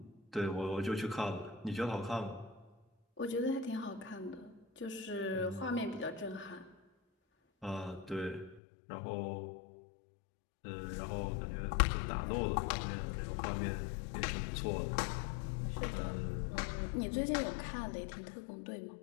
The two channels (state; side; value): drops out; right; at 8.6 s